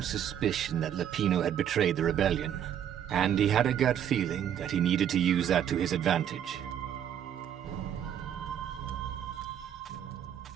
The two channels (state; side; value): quieter; left; 9.7 dB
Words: suspicion that Lapino had betrayed the rebellion, and he had a gut feeling that he needed to use that to his advantage.